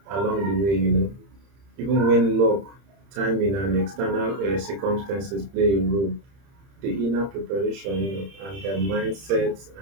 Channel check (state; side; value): late; left; 30 ms